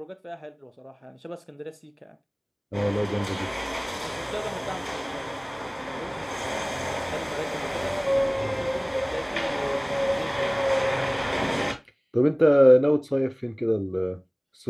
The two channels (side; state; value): both; identical; correlation 1.00